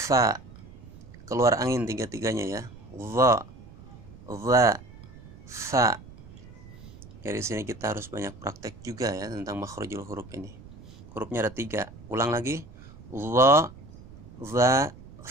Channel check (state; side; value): noise; right; rumble, 18 dB below the sound